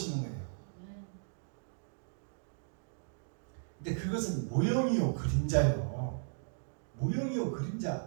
거예요. 근데 그것은 모형이요 그림자요. 모형이요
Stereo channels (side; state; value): left; silent; digital silence